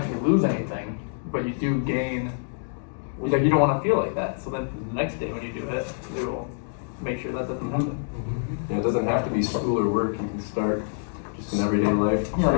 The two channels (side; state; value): right; silent; digital silence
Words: lose anything, but you do gain. Like you don't want to feel like that. So then the next day when you do it, you will make sure that doesn't happen. Yeah, it doesn't have to be school or work. You can start just in everyday life. Yeah,